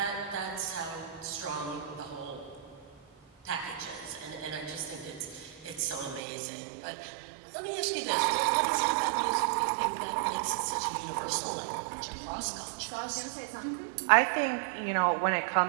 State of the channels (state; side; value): drops out; left; at 6.2 s